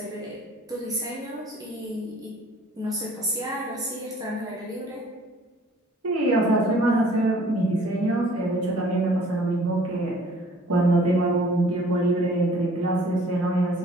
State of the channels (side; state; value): both; normal; correlation 0.54